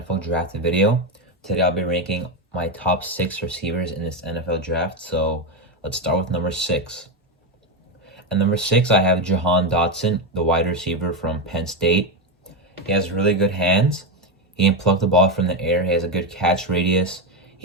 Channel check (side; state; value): both; normal; correlation 0.11